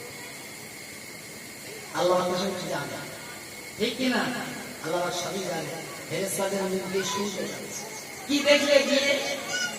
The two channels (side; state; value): both; identical; correlation 1.00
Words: আল্লাহ জানে, ঠিক কিনা? আল্লাহ সবই জানে। ফেরেশতাদের মুখ দিয়ে শুনতে যাচ্ছে, কি দেখলে গিয়ে